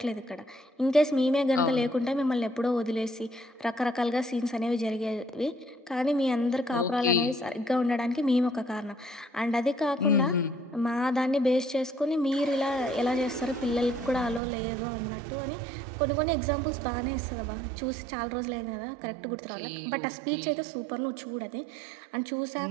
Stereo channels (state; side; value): drops out; left; at 14.4 s